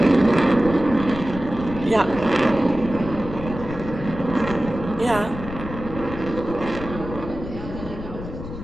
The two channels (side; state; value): left; noise; rumble, 10 dB below the sound